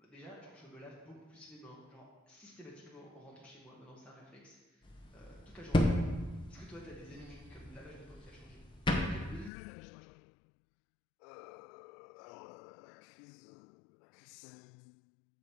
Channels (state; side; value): drops out; right; at 9.5 s